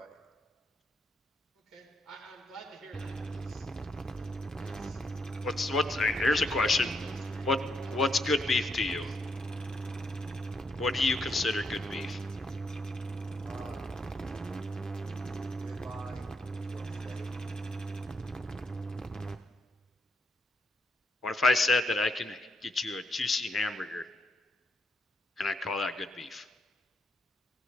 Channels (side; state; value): both; normal; correlation 0.78